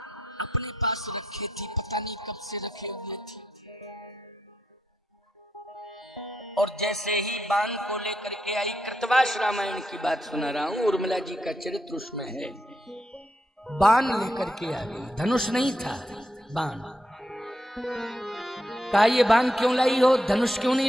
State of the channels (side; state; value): both; normal; correlation 0.81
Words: अपने पास रखे थी, पता नहीं कब से रखे हुए थे। और जैसे ही बाण को लेकर के आई, कृतवास रामायण की बात सुना रहा हूं, उर्मिला जी का चरित्र उसमें है। बाण लेकर के आ गई, धनुष नहीं था, बाण। कहा ये बाण क्यों लाई हो, धनुष क्यों